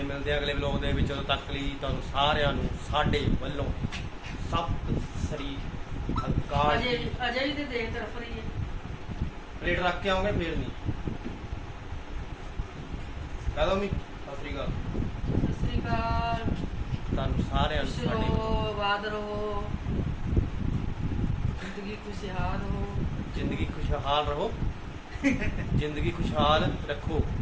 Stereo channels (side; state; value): both; identical; correlation 1.00